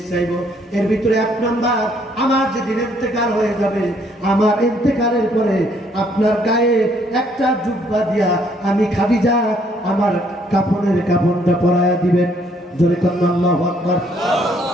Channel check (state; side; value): normal; both; correlation 0.66